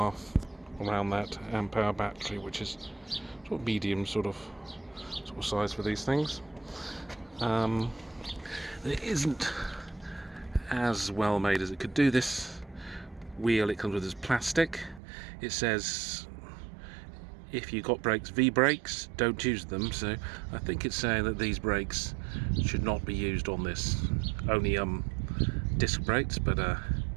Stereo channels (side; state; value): left; drops out; at 15.0 s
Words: around that amp hour battery, which is sort of medium sort of size for these things. It isn't as well made as it could do. This wheel it comes with is plastic. It says if you got brakes, V brakes, don't use them, so I think it's saying that these brakes should not be used on this, only disc brakes, but